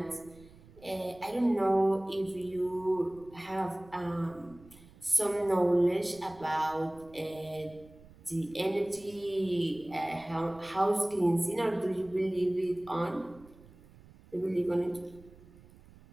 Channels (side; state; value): right; noise; rumble, 23 dB below the sound